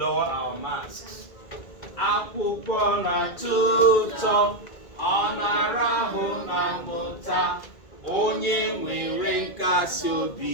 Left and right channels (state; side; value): late; right; 1.9 ms